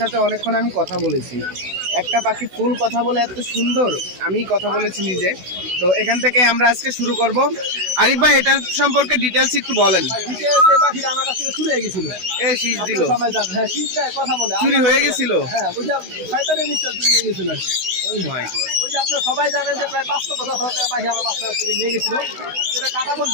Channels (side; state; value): left; late; 16 ms